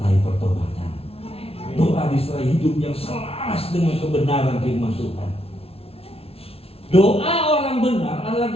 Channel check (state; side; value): late; right; 0.28 ms